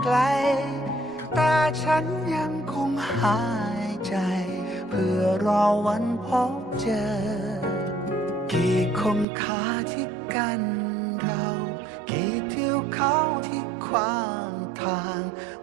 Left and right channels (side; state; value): left; drops out; at 9.2 s